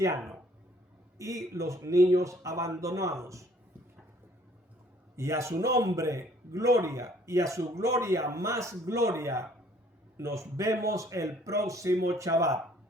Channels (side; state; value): both; normal; correlation 0.59